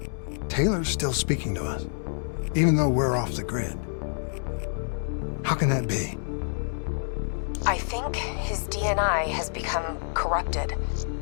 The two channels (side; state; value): right; silent; 60 dB below the other